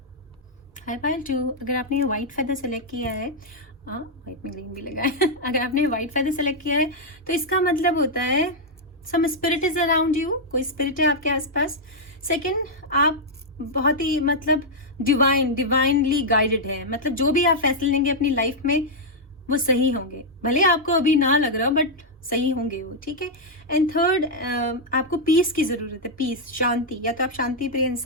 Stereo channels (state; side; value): normal; both; correlation -0.04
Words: Hi pile 2, अगर आपने व्हाइट फेदर सेलेक्ट किया है, व्हाइट में ग्रीन भी लगा है अगर आपने व्हाइट फेदर सेलेक्ट किया है तो इसका मतलब होता है सम स्पिरिट इज अराउंड यू, कोई स्पिरिट है आपके आसपास। सेकंड, आप बहुत ही मतलब डिवाइनली गाइडेड है, मतलब जो भी आप फैसले लेंगे अपनी लाइफ में वो सही होंगे, भले आपको अभी ना लग रहा बट सही होंगे वो, ठीक है। एंड थर्ड, आपको पीस की ज़रूरत है, पीस, शांति, या तो आप शांति प्रिय